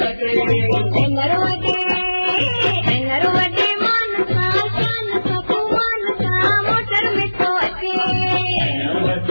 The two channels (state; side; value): inverted; both; correlation -1.00